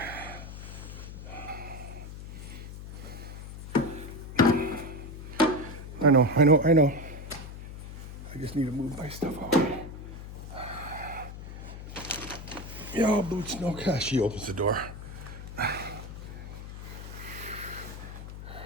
I know. I just need to move my stuff out. Yo, boots, no cash. She opens the door.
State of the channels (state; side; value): noise; left; hum, 11 dB below the sound